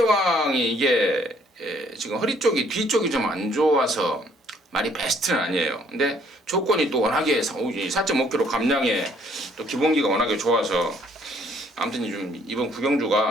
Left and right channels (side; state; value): both; normal; correlation 0.63